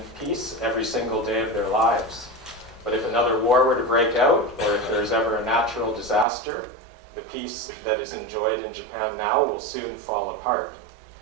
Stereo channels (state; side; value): drops out; left; at 6.2 s